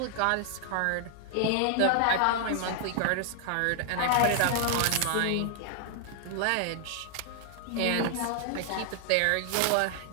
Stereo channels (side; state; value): both; different; correlation 0.00